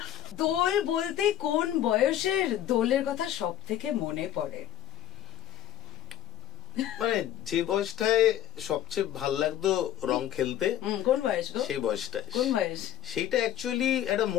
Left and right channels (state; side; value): quieter; right; 11.9 dB